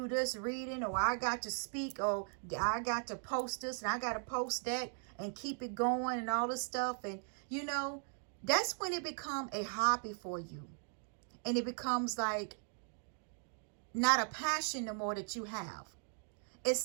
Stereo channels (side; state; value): left; silent; 52 dB below the other